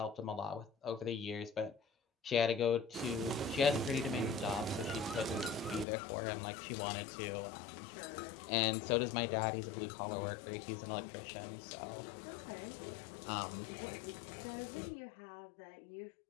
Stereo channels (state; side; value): drops out; right; at 5.9 s